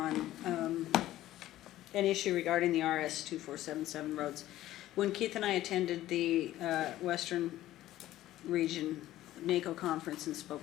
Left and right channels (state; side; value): quieter; right; 14.5 dB